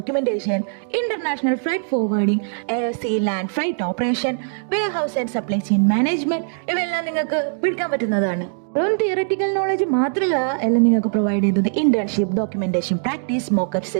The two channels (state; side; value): silent; left; digital silence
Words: international freight forwarding, air sea land freight operation, warehouse and supply chain management ഇവയെല്ലാം നിങ്ങൾക്ക് പഠിക്കാൻ പറ്റുന്നതാണ്. വെറും തിയററ്റിക്കൽ നോളജ് മാത്രമല്ല എല്ലാം നിങ്ങൾക്ക് പ്രൊവൈഡ് ചെയ്തത്. Internship, documentation, practice, mockup